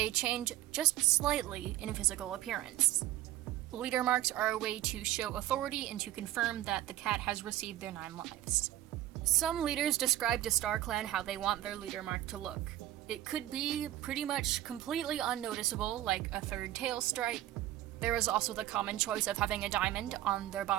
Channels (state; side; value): quieter; left; 14.1 dB